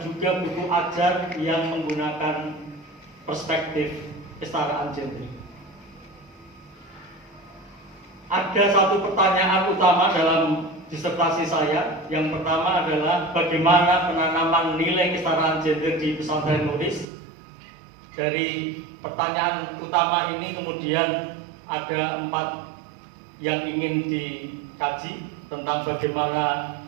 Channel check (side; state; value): left; drops out; at 17.1 s